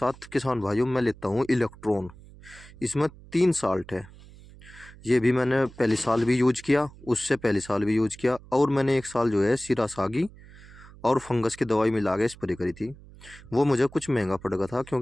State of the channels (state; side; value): noise; right; hum, 21 dB below the sound